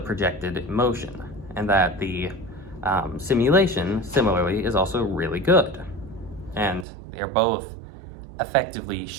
projected motion, and that the simulation, similarly, is also really good. And they're both effectively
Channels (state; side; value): drops out; left; at 6.9 s